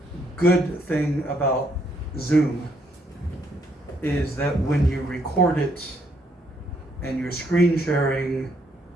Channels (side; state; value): both; normal; correlation 0.72